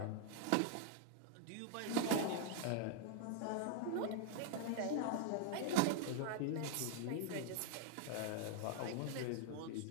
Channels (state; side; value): different; both; correlation 0.00